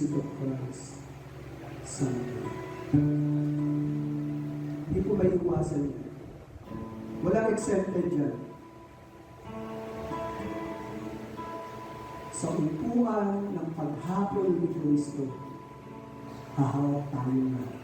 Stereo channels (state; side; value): identical; both; correlation 1.00